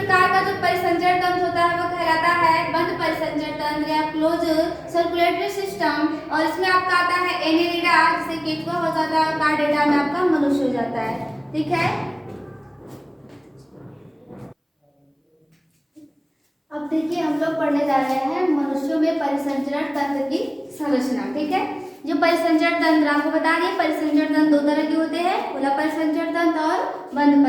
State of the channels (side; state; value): both; identical; correlation 1.00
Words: का जो परिसंचरण तंत्र होता है वो कहलाता है बंद परिसंचरण तंत्र या क्लोज सर्कुलेटरी सिस्टम। और इसमें आपका आता है एनेलिडा, जिसे केंचुआ हो जाता है, और कार्डेटा में आपका मनुष्य हो जाता है। ठीक है, अब देखिए हम लोग पढ़ने जा रहे हैं मनुष्यों में परिसंचरण तंत्र की संरचना। ठीक है, जो परिसंचरण तंत्र आपको बता दिए, परिसंचरण तंत्र दो तरह के होते हैं, खुला परिसंचरण तंत्र और बंद